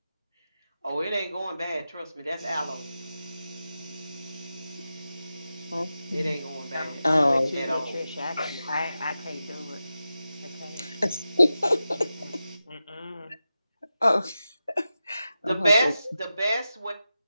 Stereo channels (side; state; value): both; inverted; correlation -0.92